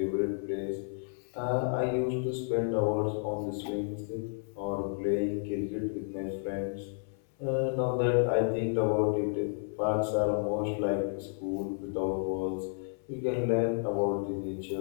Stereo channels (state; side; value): silent; right; 57 dB below the other